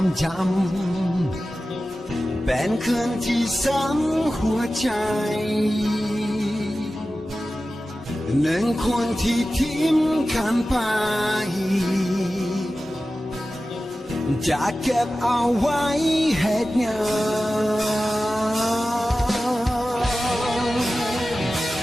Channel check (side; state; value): both; normal; correlation 0.95